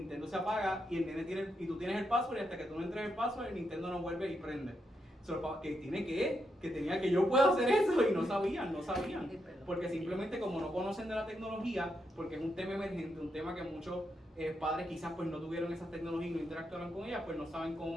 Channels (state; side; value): normal; both; correlation 0.82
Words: se apaga y el nene y tú tienes el password, y hasta que tú no entres el password, el Nintendo no vuelve y prende. Que tenía que yo puedo hacer eso, y no sabían, porque simplemente como no conocen de la tecnología, porque es un tema emergente, un tema que muchos padres quizás pues no tuvieron esas tecnologías y no interactuaron con ellas, pues no saben cómo